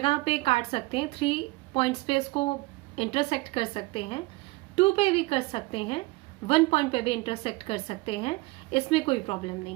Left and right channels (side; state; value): left; quieter; 22.4 dB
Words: पे काट सकते हैं, 3 पॉइंट्स पे इसको इंटरसेक्ट कर सकते हैं, 2 पे भी कर सकते हैं, 1 पॉइंट पे भी इंटरसेक्ट कर सकते हैं, इसमें कोई प्रॉब्लम नहीं